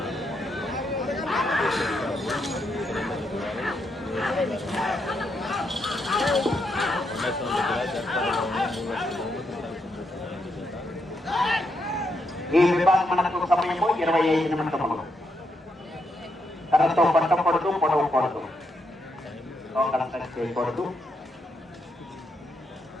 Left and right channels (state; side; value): normal; both; correlation 0.80